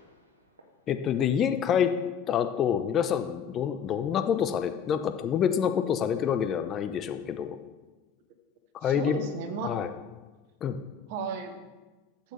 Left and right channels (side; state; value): right; quieter; 7.3 dB